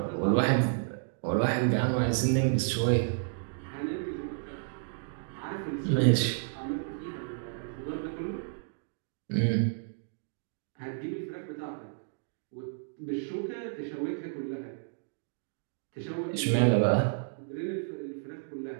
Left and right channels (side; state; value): left; silent; digital silence